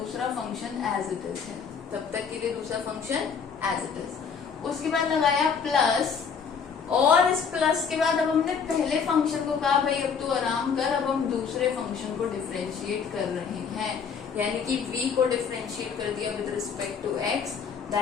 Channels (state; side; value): quieter; right; 6.3 dB